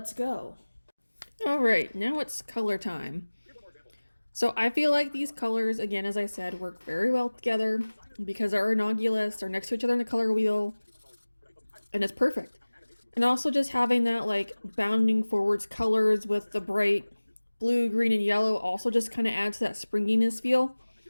go. All right, now it's color time. So I feel like these colors, again, as I said, work very well together because they're innocuous, they're next to each other in the color wheel, and it's perfect. And also just having that like bounding forwards colors with the bright blue, green, and yellow also just kind of adds to that springiness feel.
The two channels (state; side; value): inverted; both; correlation -1.00